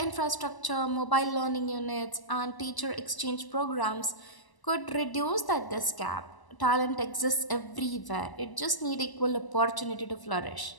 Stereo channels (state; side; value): late; right; 1.0 ms